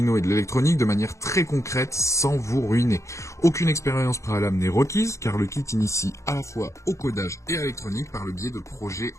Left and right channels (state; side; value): late; right; 0.14 ms